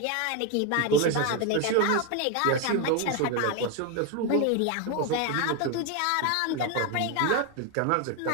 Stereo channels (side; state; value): both; different; correlation 0.02